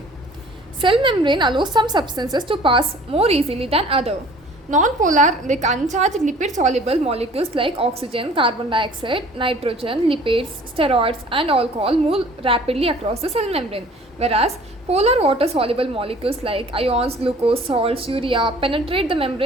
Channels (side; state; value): both; normal; correlation 0.50